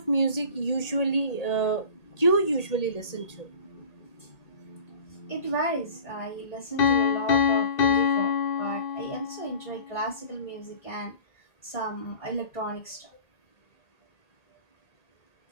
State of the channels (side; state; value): right; late; 1.8 ms